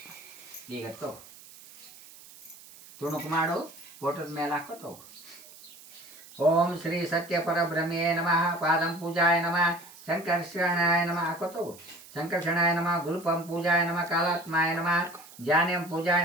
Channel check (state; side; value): noise; right; hiss, 20 dB below the sound